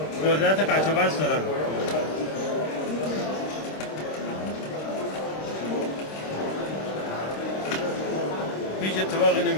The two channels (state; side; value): late; right; 26 ms